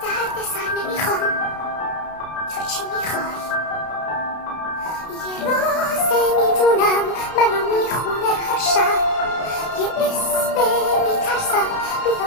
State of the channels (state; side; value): late; right; 32 ms